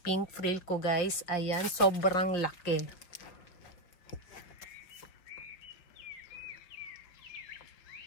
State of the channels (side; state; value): right; late; 5.4 ms